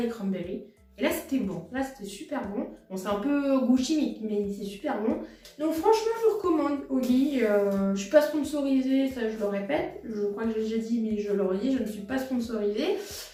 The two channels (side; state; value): both; identical; correlation 1.00